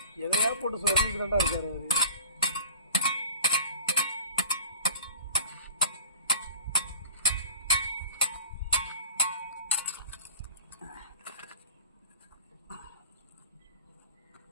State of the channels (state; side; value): inverted; both; correlation -0.43